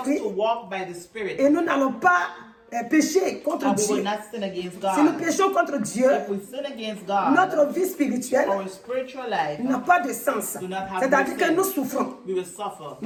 et nous n'allons pas pécher contre Dieu. Si nous péchons contre Dieu, notre vie spirituelle n'a pas de sens. C'est-à-dire que nous souffrons.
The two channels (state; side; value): identical; both; correlation 1.00